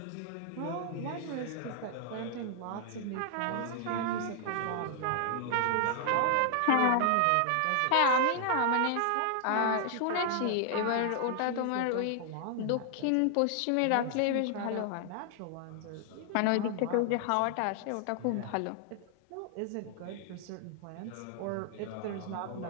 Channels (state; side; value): different; both; correlation 0.00